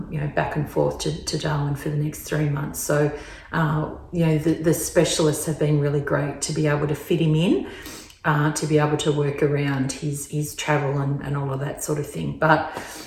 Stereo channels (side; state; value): both; identical; correlation 1.00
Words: back and forth to Darwin for the next 3 months. So, the specialists have been really great to be able to fit him in, to be able to work around his travel and all of that sort of thing. But